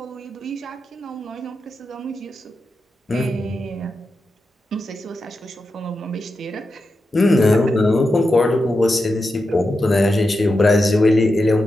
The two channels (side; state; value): both; normal; correlation 0.89